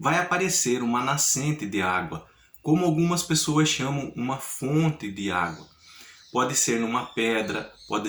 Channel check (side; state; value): both; identical; correlation 1.00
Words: vai aparecer uma nascente de água, como algumas pessoas chamam uma fonte de água. Pode ser numa pedra, pode